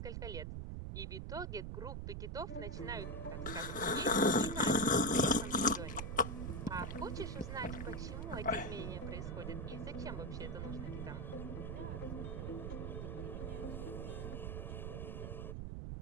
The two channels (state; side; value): noise; right; rumble, 4 dB below the sound